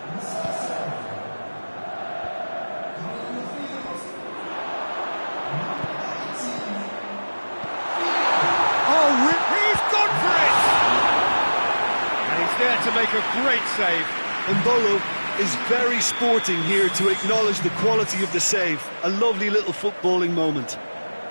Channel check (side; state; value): both; inverted; correlation -1.00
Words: Oh, he's gone for it! And he's there to make a great save. Mbolo is very sporting here to acknowledge the quality of the save. A lovely little footballing moment.